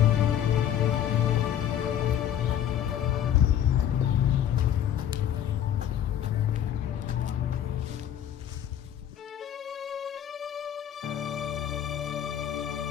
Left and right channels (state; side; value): quieter; right; 10.3 dB